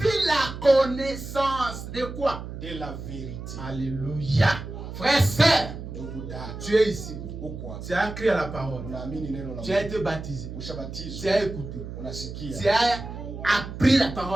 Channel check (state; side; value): noise; right; hum, 9 dB below the sound